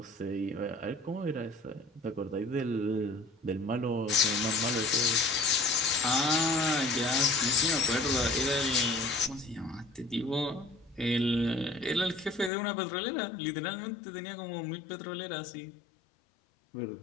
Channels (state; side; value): drops out; right; at 12.5 s